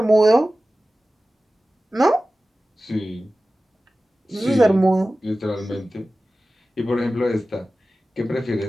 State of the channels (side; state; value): both; normal; correlation 0.96